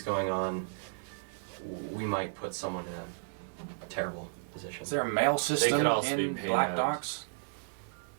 going on, we might put someone in a terrible position. Is there a mail system could also be in paid Black out. Docks?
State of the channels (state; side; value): silent; left; digital silence